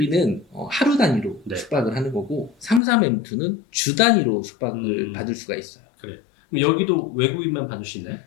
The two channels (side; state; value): right; drops out; at 2.8 s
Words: 하루 단위로 네. 숙박을 하는 거고 33M2는 주 단위로 숙박을 받을 수가 있어요. 그래요. 그럼 여기도 외국인만 받을 수 있나요?